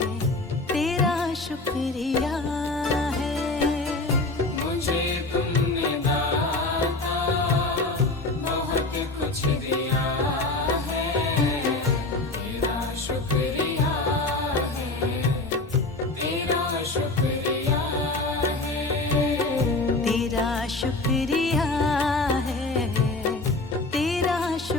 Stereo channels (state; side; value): quieter; right; 3.1 dB